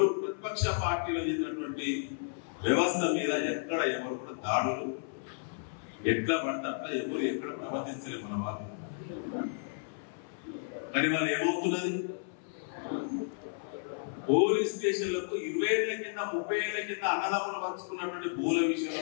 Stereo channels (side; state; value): right; silent; 56 dB below the other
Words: ప్రతిపక్ష పార్టీలో చేసినటువంటి వ్యవస్థ మీద ఎక్కడ ఎవరు కూడా దాడులు ఎట్లా పడితే అట్లా ఎవరు ఎక్కడ ప్రవర్తించలేదు మన వాళ్ళు. కానీ వాళ్ళు ఏమవుతున్నది, పోలీస్ స్టేషన్లకు 20 ఏళ్ల కింద 30 ఏళ్ల కింద అన్నదమ్ములు పంచుకున్నటువంటి భూల విషయంలో